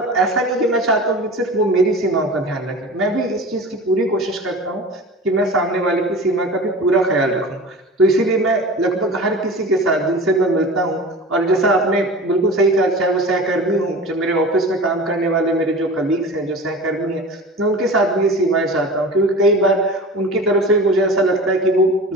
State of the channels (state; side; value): normal; both; correlation 0.35